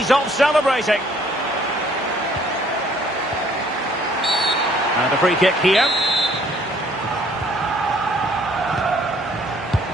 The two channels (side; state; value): both; normal; correlation 0.61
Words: off celebrating. And a free kick here.